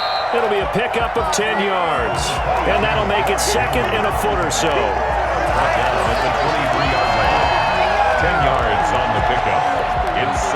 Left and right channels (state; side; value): identical; both; correlation 1.00